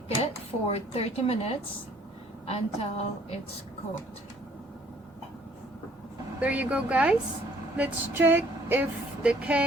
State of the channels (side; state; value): both; normal; correlation 0.59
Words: it for 30 minutes until it's cooked. There you go, guys. Let's check if the